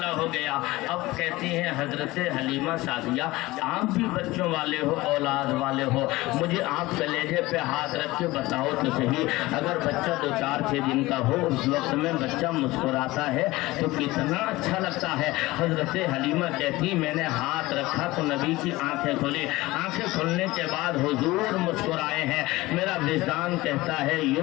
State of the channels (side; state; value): right; quieter; 19.5 dB